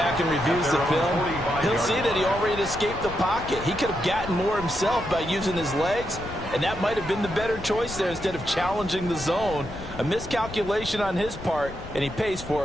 and reviews the film, he'll see that he already escaped the pocket. He could have gotten more himself by using his legs, and that might have been the better choice there instead of challenging the zone. A miscalculation on his part, and he pays for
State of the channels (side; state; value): left; noise; rumble, 13 dB below the sound